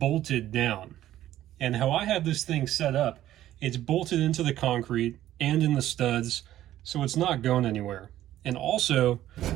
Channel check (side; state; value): left; quieter; 13.2 dB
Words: down. And how I have this thing set up, it's bolted into the concrete and in the studs, so it's not going anywhere. And also,